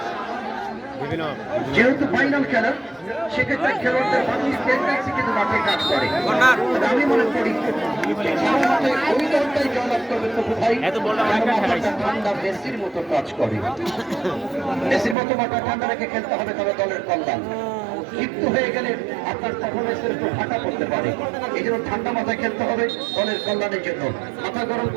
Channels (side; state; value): left; drops out; at 15.2 s